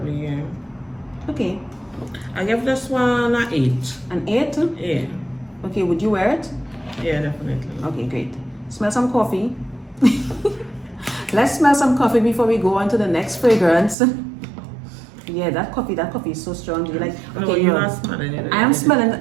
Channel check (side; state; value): left; drops out; at 14.0 s